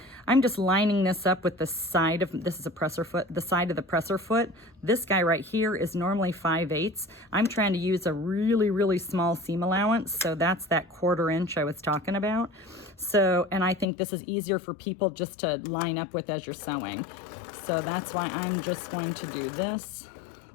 I'm just lining this up with the side of, this is a presser foot, the side of the presser foot. This guy right here is normally 5/8. I'm trying to use a really, really small seam allowance, so that's that 1/4 inch I was talking about. So, and I think this is easier for people just to line up with as you're sewing. So that's why I'm just going to do this.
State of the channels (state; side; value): drops out; right; at 13.9 s